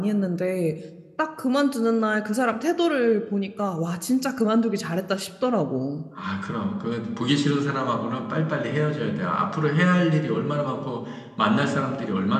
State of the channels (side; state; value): both; identical; correlation 1.00